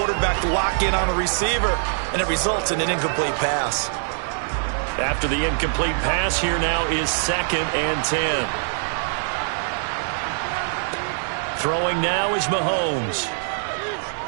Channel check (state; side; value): silent; left; digital silence